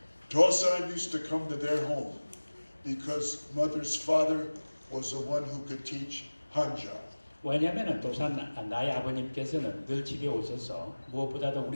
Dosan used to come to their home because mother's father was the one who could teach Hanja. 왜냐하면 도산 나의 아버님께서는 늘 집에 오셔서 무엇보다도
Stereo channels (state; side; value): inverted; both; correlation -1.00